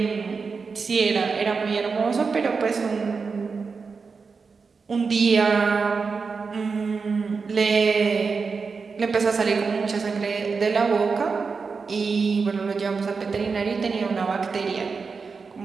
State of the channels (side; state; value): left; quieter; 4.9 dB